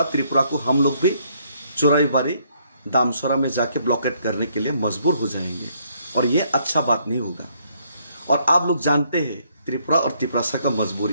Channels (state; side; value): inverted; both; correlation -0.69